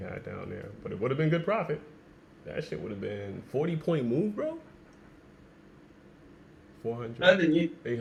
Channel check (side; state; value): both; identical; correlation 1.00